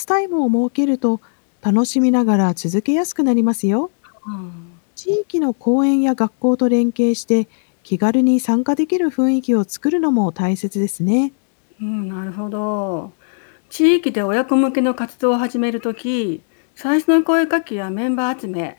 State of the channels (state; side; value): silent; right; digital silence